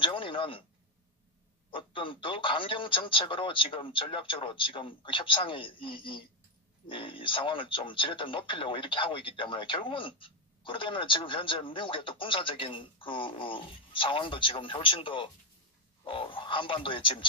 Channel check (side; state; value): both; normal; correlation 0.04